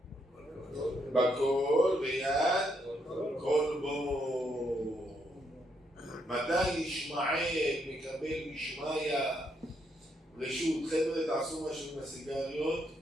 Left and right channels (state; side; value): normal; both; correlation 0.76